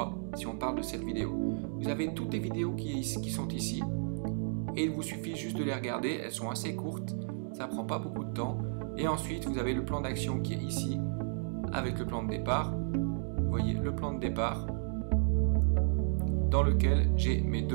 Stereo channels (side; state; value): left; silent; digital silence